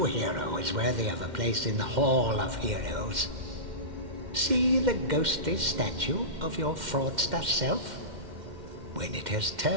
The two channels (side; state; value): left; late; 2.1 ms